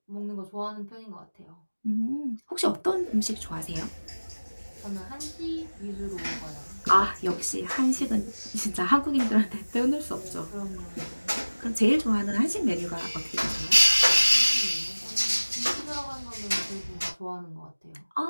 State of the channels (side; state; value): both; inverted; correlation -1.00